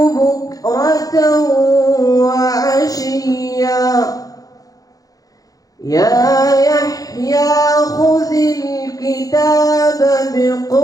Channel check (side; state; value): right; late; 0.17 ms